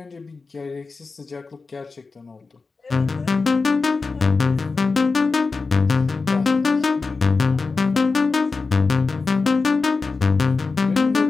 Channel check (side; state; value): right; quieter; 4.2 dB